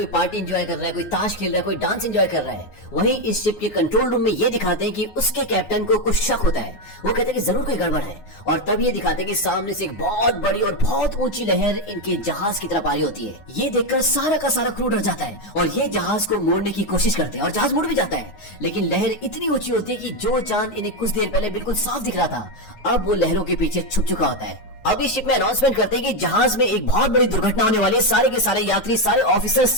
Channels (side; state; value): right; late; 9.5 ms